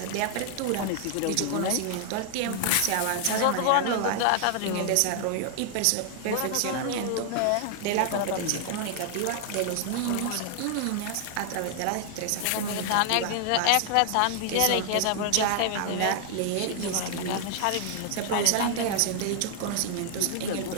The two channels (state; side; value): different; both; correlation 0.00